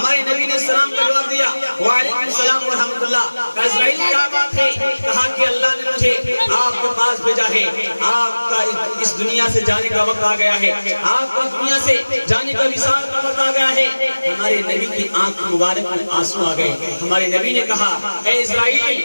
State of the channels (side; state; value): both; inverted; correlation -1.00